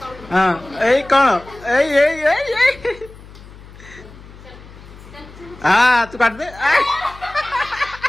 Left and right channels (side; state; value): left; noise; hum, 19 dB below the sound